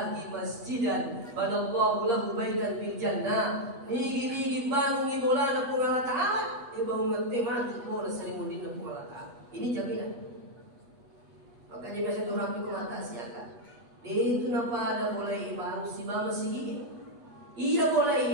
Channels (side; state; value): left; late; 8.2 ms